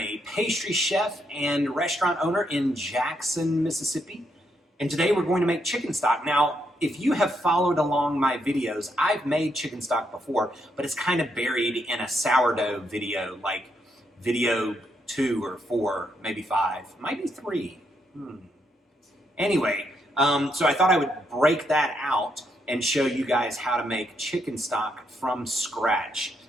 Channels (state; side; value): normal; both; correlation 0.78